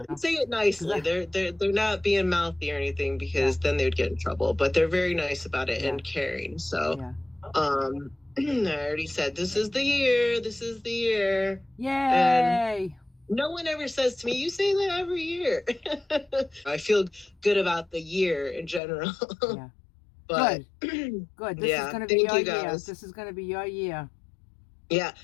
And say it nicely. They're not being mouthy or anything, because then they'd get in trouble, but they're very nice about it and caring. So, I already said, this is the year. Yay. And no one ever says to me, you say that every year. I feel good about the year in general. Yeah. But good. This is going to be your year. This is going to be your year. Yeah.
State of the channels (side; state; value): right; drops out; at 18.8 s